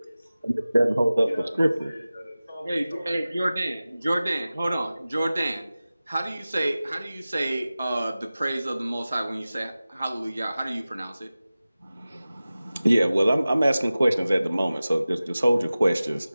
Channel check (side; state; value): both; inverted; correlation -0.96